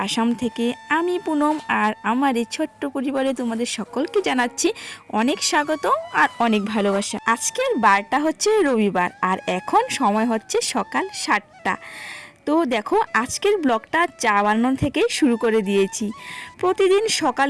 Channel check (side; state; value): both; identical; correlation 1.00